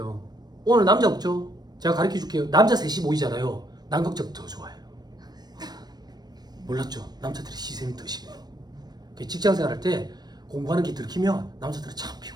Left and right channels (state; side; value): late; left; 0.19 ms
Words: 오늘 남자 없죠? 제가 가르쳐 줄게요. 남자 셋이 모이잖아요. 남극정 더 좋아해요. 몰랐죠? 남자들이 시샘이 더 심해요. 직장생활 할 때 공부하는 게 들키면 남자들은 참